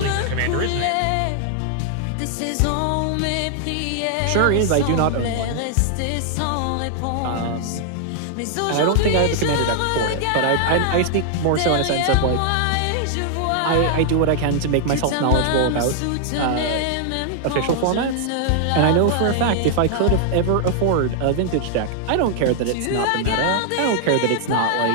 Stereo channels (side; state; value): both; different; correlation -0.01